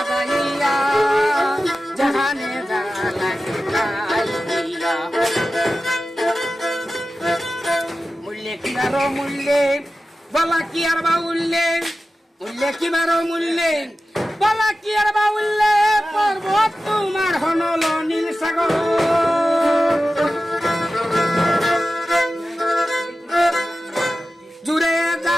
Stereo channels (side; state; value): both; normal; correlation 0.94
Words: জাহানে যা লাগে তাই দিয়া। মূল্যে কিবারো মূল্যে বলা কি আর বা উল্লে, মূল্যে কিবারো মূল্যে বলা কি আর বা উল্লে। পর্বত তোমার হনল নীল সাগর, জুড়ে